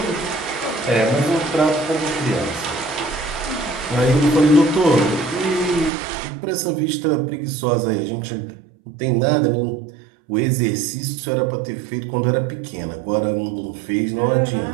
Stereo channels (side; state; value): left; drops out; at 5.9 s